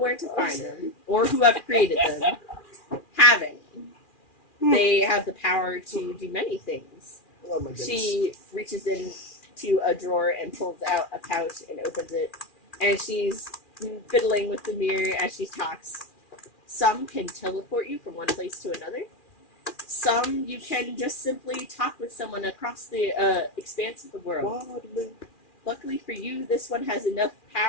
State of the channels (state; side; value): late; right; 2.4 ms